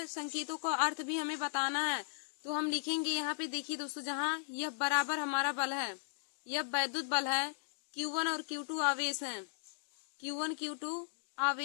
संकेतों का अर्थ भी हमें बताना है। तो हम लिखेंगे यहाँ पे, देखिए दोस्तों, जहाँ F बराबर हमारा बल है, F वैद्युत बल है, Q1 और Q2 आवेश है, Q1 Q2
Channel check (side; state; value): right; silent; digital silence